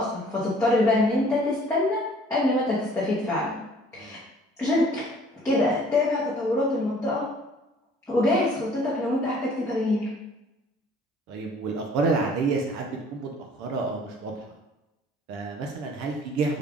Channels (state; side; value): normal; both; correlation 0.55